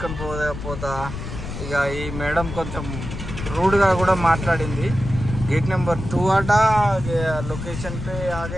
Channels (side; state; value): left; noise; rumble, 8 dB below the sound